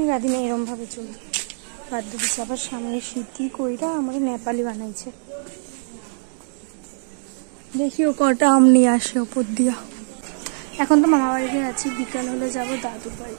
গাদি না এরম ভাবে চুল বাঁধতে দিচ্ছে। আবার সামনে শীতি কইরা আমার নেপালি বানাইছে। দেখি ও কটা আম নিয়ে আসে ওপর দিয়া। এখন তো মামা বাড়িতে আছি, বিকাল হলে যাবো দাদুর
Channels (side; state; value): left; silent; 64 dB below the other